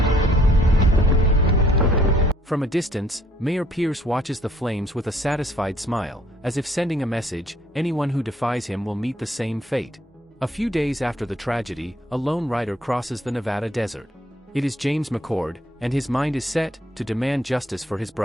From a distance, Mayor Pierce watches the flames with a satisfied smile, as if sending a message, anyone who defies him will meet the same fate. A few days after the tragedy, a lone rider crosses the Nevada desert. It is James McCord, and his mind is set to demand justice for his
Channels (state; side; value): normal; both; correlation 0.63